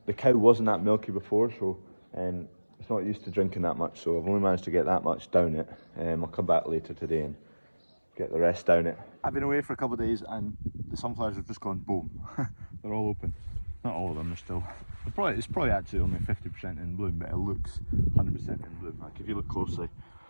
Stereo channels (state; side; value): inverted; both; correlation -1.00